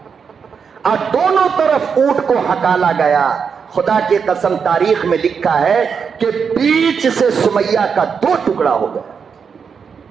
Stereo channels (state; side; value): quieter; left; 6.3 dB